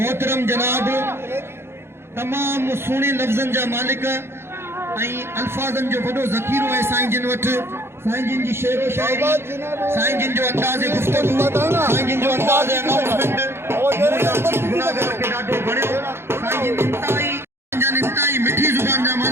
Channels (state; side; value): late; left; 0.12 ms